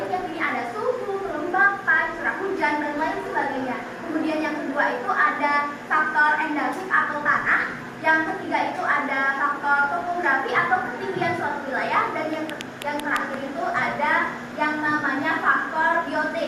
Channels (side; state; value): both; identical; correlation 1.00